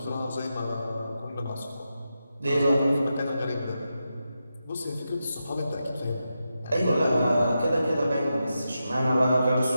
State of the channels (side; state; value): both; inverted; correlation -0.88